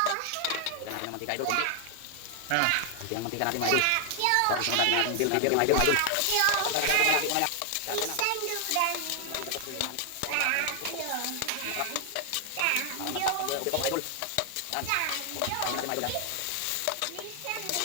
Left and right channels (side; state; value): both; different; correlation 0.00